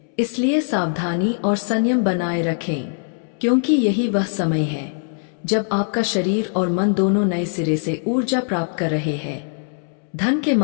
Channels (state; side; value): silent; right; 65 dB below the other